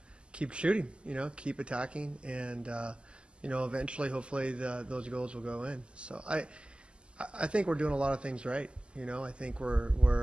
shooting, keep attacking, and eventually, hopefully, those goals will go in. So I think we're doing a lot of things right. I think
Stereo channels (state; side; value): late; left; 0.052 ms